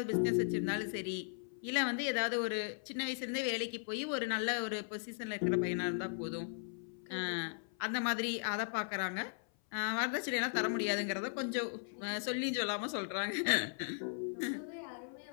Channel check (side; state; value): right; silent; 53 dB below the other